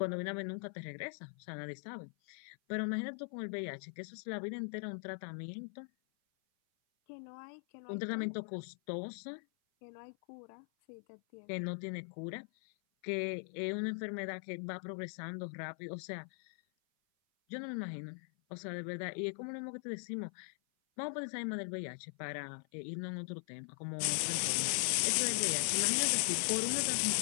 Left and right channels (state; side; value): silent; right; 51 dB below the other